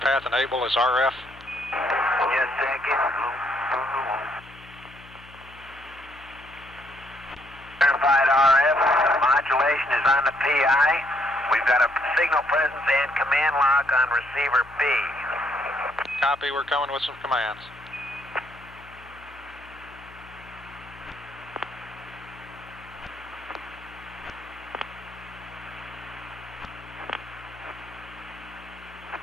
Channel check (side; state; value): left; noise; hum, 22 dB below the sound